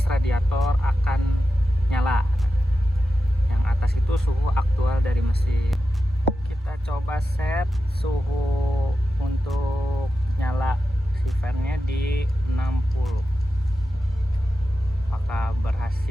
radiator akan nyala. Yang atas itu suhu aktual dari mesin. Kita coba set suhu untuk nyala si fan-nya di 60. Apakah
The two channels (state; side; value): normal; both; correlation 0.91